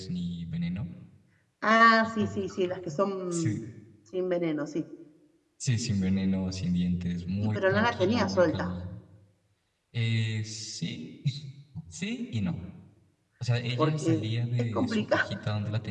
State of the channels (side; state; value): both; identical; correlation 1.00